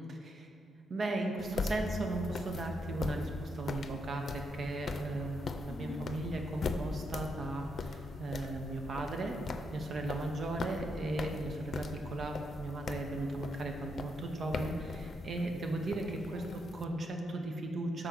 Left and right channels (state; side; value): normal; both; correlation 0.80